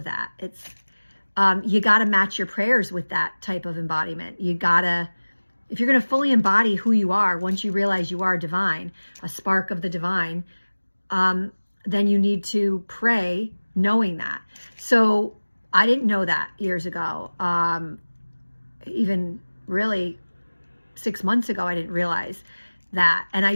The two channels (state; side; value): inverted; both; correlation -1.00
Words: that. It's you got to match your prayers with that type of embodiment. You gotta, if you're going to fully embody who you are, once you realize you are divine, a spark of the divine, then you need to pray knowing that. So I didn't know that years ago. Even really 6 months ago, I didn't realize that. And I